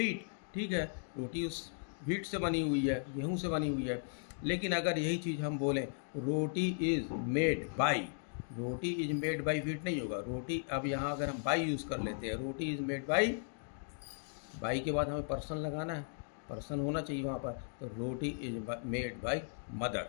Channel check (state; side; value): silent; right; digital silence